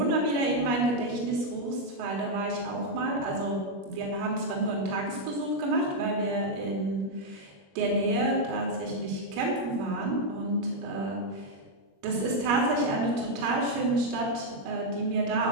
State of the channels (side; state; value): left; late; 21 ms